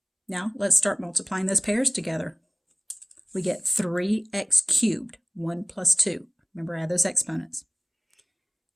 Now let's start multiplying those pairs together. We get 3x cubed, 1 plus 2. Remember, add those exponents.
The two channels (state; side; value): identical; both; correlation 1.00